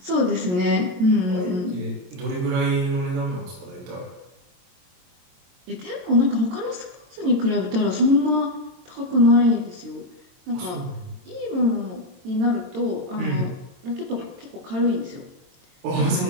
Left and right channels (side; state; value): left; late; 22 ms